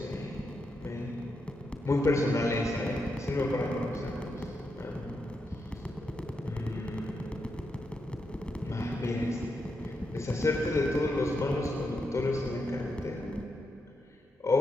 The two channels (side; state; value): both; normal; correlation 0.84